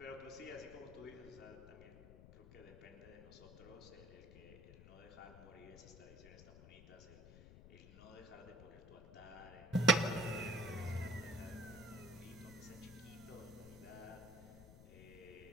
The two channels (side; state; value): left; noise; rumble, 16 dB below the sound